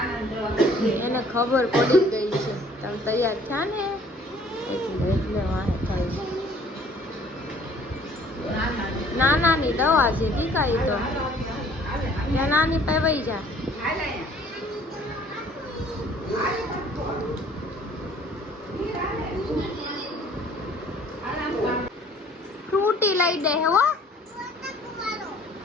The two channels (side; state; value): both; normal; correlation 0.56